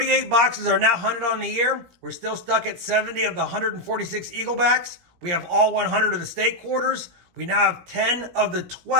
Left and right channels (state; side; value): late; left; 17 ms